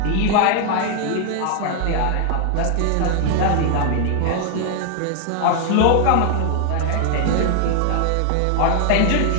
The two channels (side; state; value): both; different; correlation 0.00